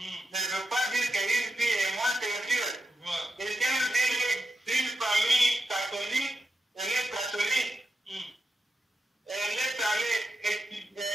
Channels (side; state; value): both; normal; correlation 0.87